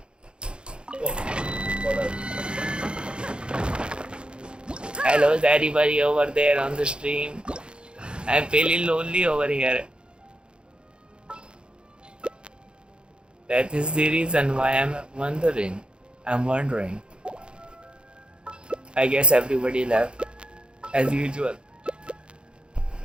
Oh, hello, is anybody over there on the stream? I'm feeling lonely over here. That is the reason why I'm wondering. I guess everybody left, as usual.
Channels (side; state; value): left; late; 0.053 ms